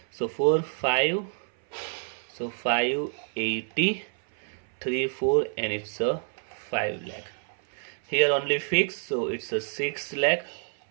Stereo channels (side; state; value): left; silent; 59 dB below the other